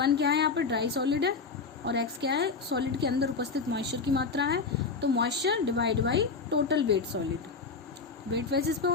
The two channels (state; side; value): quieter; right; 4.7 dB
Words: क्या है यहाँ पर, ड्राई सॉलिड है, और x क्या है, सॉलिड के अंदर उपस्थित मॉइस्चर की मात्रा है। तो moisture divide by total weight solid. Wet basis पे